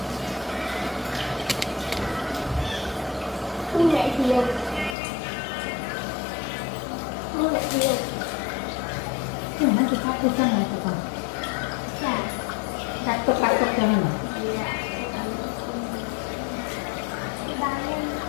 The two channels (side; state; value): right; drops out; at 5.0 s